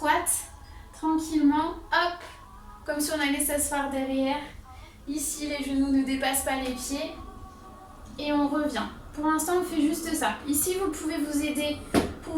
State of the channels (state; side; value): identical; both; correlation 1.00